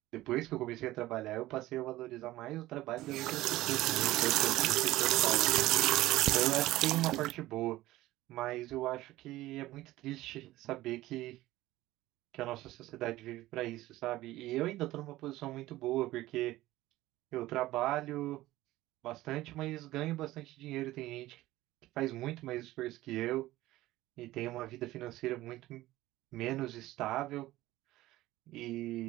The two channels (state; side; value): quieter; left; 16.7 dB